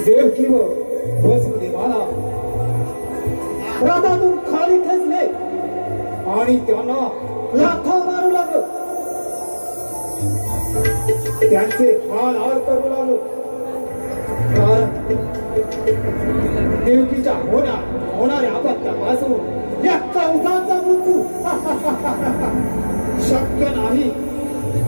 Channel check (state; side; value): inverted; both; correlation -1.00